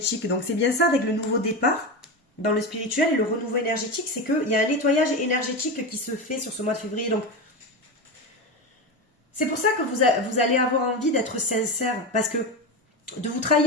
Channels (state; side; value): normal; both; correlation 0.19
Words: Donc c'est bien ça avec le nouveau départ dans le spirituel. Et le renouveau énergétique, c'est qu'il y a un nettoyage énergétique qui se fait sur ce mois de février. Donc c'est pour ça que vous allez avoir envie d'être sincère. Parce que de vous